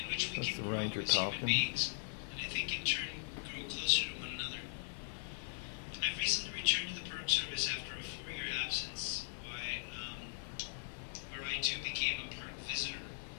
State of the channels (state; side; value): silent; right; 51 dB below the other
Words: which we That's can the grow ranger as human talking. beings, and I think in turn grow closer to one another. I've recently returned to the Park Service after a 4-year absence, where I too became a park visitor,